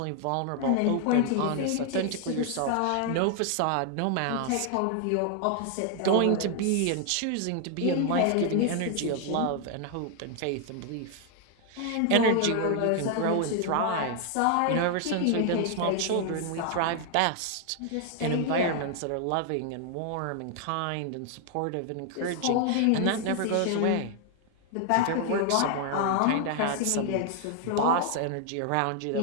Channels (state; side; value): different; both; correlation 0.00